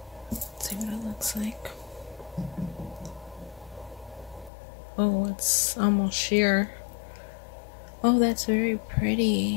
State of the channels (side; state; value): right; drops out; at 4.5 s